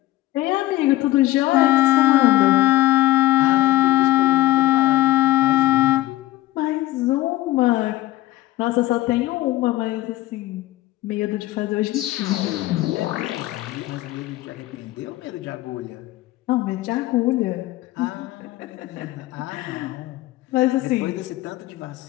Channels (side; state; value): right; quieter; 16.5 dB